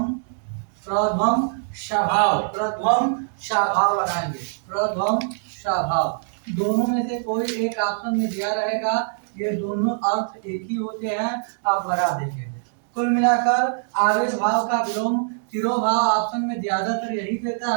प्रध्वम स्वभाव, प्रध्वम स्वभाव लगाएंगे, प्रध्वम स्वभाव। दोनों में से कोई एक ऑप्शन में दिया रहेगा, ये दोनों अर्थ एक ही होते हैं, आप लगा देंगे। कुल मिलाकर आविर्भाव का विलोम तिरोभाव ऑप्शन में ज्यादातर यही देता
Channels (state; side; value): silent; left; digital silence